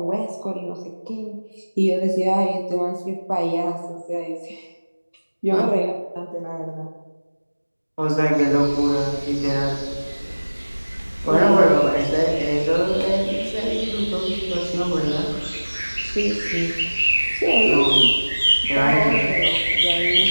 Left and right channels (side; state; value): both; inverted; correlation -1.00